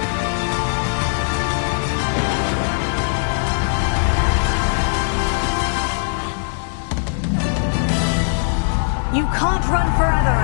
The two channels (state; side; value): silent; right; digital silence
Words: You can't run forever,